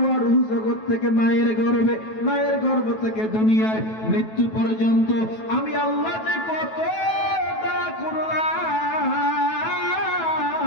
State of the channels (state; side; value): late; right; 9.2 ms